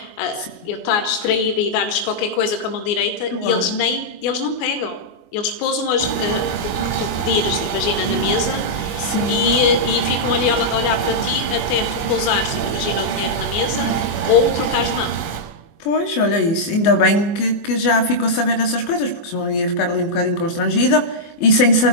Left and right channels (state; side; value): late; right; 24 ms